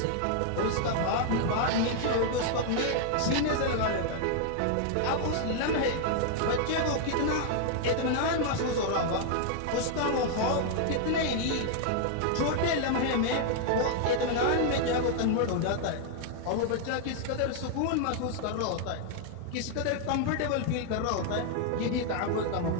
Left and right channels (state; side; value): different; both; correlation 0.00